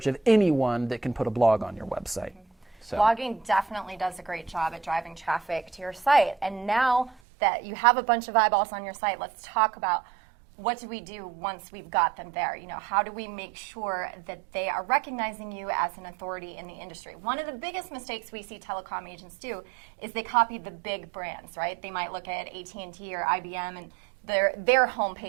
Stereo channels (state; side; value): drops out; left; at 7.2 s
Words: of anyone that can put a blog on your website. So. Blogging definitely does a great job at driving traffic to your site. And now that you have a bunch of eyeballs on your site, let's talk about what do we do once we've got them there? You know, how do we make sure that they are recognizing you as an authority in the industry? One of the biggest mistakes we see telecom agents do is they copy the big brands, right? They might look at AT&T or IBM and their